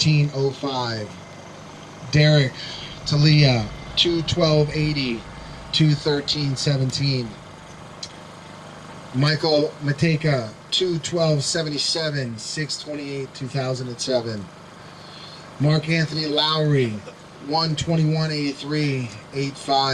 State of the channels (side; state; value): both; identical; correlation 1.00